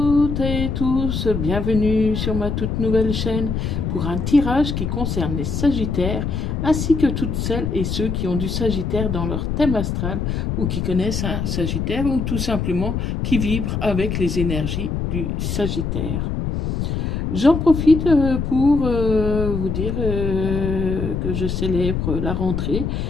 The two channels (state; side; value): noise; left; rumble, 2 dB below the sound